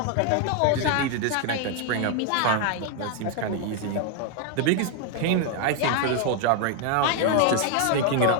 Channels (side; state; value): both; different; correlation 0.00